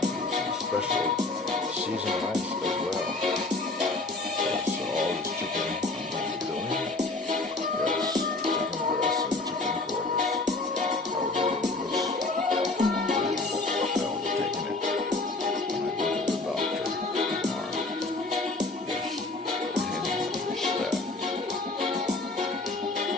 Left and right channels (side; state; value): right; quieter; 3.2 dB